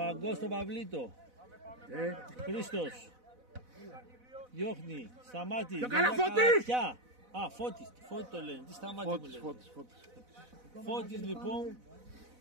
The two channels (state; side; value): late; left; 4.0 ms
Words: στον Παυλίτο. Χρήστος. Διώχνει. Σταμάτη. Το καλά Φώτης! Α, Φώτης. Φώτη το λένε. Τι Σταμάτη μου λένε. Φώτης λοιπόν.